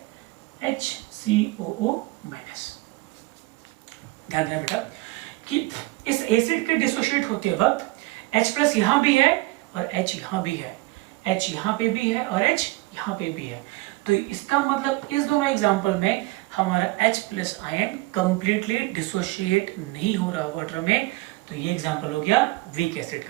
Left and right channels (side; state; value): left; quieter; 21.3 dB